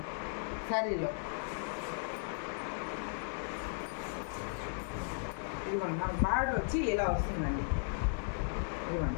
శారీలో. ఇదిగోండి, మన బార్డర్ వచ్చి ఇలా వస్తుందండి.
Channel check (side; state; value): right; silent; digital silence